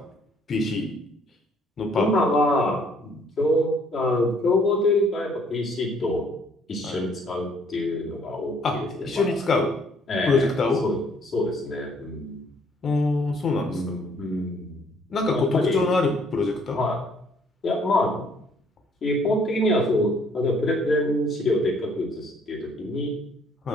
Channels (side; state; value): both; normal; correlation 0.63